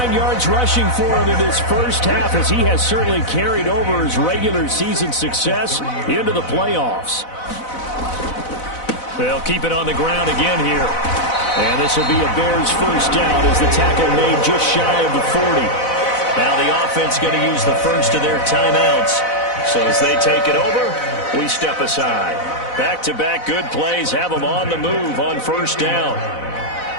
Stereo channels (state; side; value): late; right; 4.0 ms